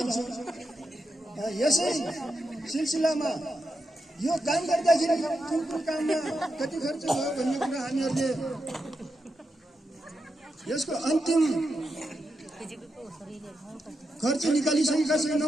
यसै सिलसिलामा यो काम गर्दाखेरि कुन काममा कति खर्च भयो भन्ने कुरा हामीहरूले यसको अन्तिम खर्च निकालिसकेका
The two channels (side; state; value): both; normal; correlation 0.86